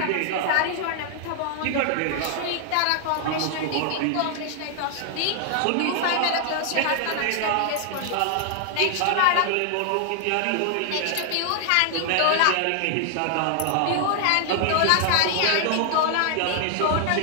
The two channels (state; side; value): different; both; correlation 0.00